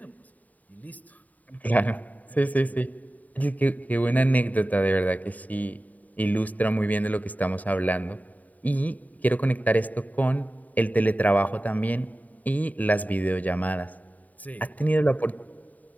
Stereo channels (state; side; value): late; right; 0.075 ms